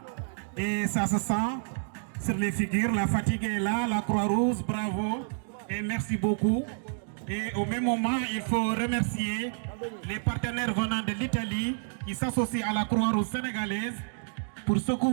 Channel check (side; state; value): left; silent; digital silence